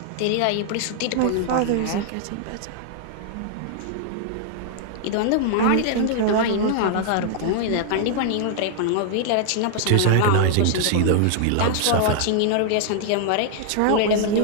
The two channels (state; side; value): different; both; correlation 0.00